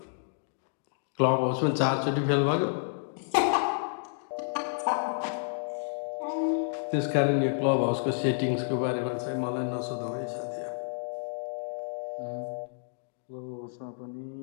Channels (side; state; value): right; silent; digital silence